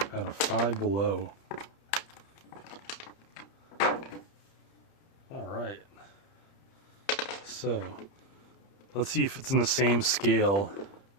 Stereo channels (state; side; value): late; right; 30 ms